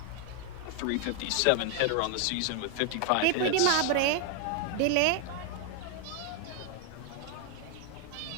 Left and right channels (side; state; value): both; different; correlation 0.00